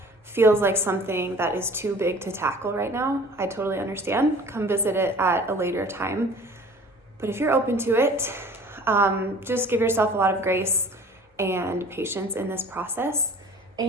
feels like something that is too big to tackle right now, I totally understand. Come visit it at a later time. But if you're open to it, just give yourself a lot of grace and patience in this process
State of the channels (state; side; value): normal; both; correlation 0.45